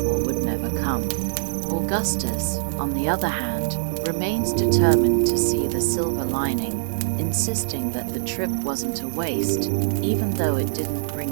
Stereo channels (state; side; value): silent; left; digital silence